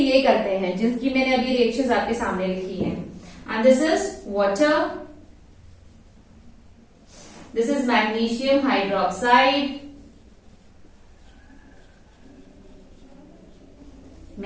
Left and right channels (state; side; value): identical; both; correlation 1.00